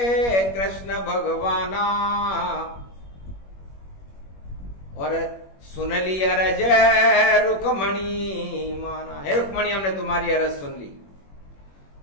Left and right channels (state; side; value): late; right; 21 ms